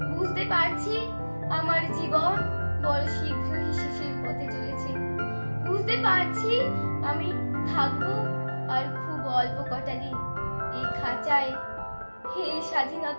বুঝতে পারছি আমার জীবন বড় শীঘ্রই শেষের পথে চলেছে। বুঝতে পারছি আমি থাকবো আর খুব অল্প কটা দিন এই খাঁচায়। হে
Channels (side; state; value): both; inverted; correlation -1.00